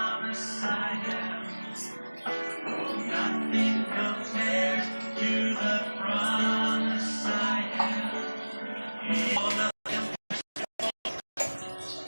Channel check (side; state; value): both; inverted; correlation -1.00